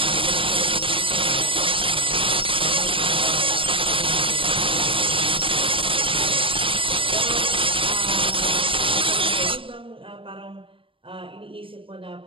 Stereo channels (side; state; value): left; late; 0.25 ms